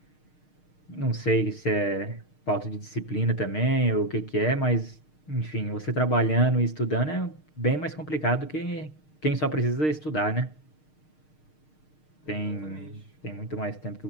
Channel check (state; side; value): late; right; 6.5 ms